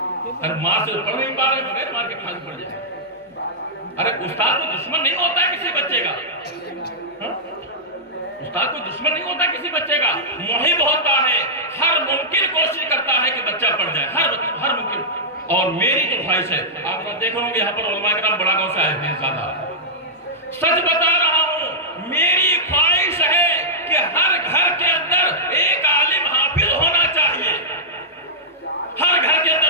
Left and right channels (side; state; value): both; normal; correlation -0.12